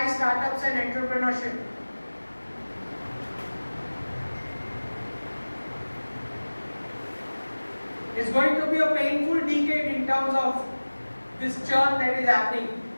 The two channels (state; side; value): inverted; both; correlation -1.00